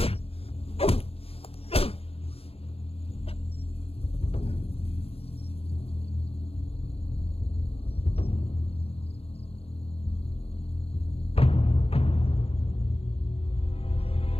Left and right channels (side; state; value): right; late; 0.28 ms